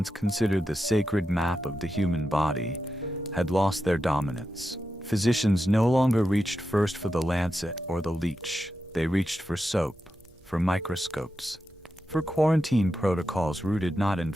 considered the sacred map of the human body, had lost their dominance. Physicians no longer reached first for the lancet or the leech. They reached for soap, for microscopes, for quarantine protocols rooted not in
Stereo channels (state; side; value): normal; both; correlation 0.89